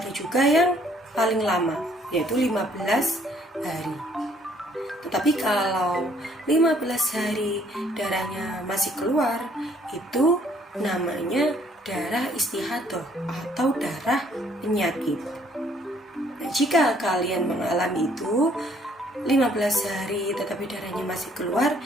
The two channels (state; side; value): normal; both; correlation 0.63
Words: juga yang paling lama, yaitu 15 hari. Tetapi kalau 15 hari darahnya masih keluar, itu namanya darah istihadah atau darah penyakit. Nah, jika kalian mengalami itu 15 hari tetapi darahnya masih keluar,